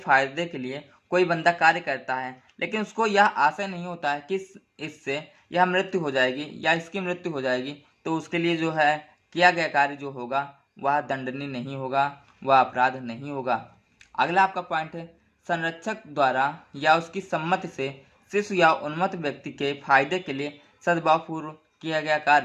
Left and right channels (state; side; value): identical; both; correlation 1.00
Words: के लिए कोई बंदा कार्य करता है लेकिन उसको यह आशय नहीं होता है कि इससे यह मृत्यु हो जाएगी या इसकी मृत्यु हो जाएगी, तो उसके लिए जो है किया गया कार्य जो होगा वह दंडनीय नहीं होगा, वह अपराध नहीं होगा। अगला आपका पॉइंट है, संरक्षक द्वारा या उसकी सम्मति से शिशु या उन्मत्त व्यक्ति के फायदे के लिए सद्भावपूर्व किया गया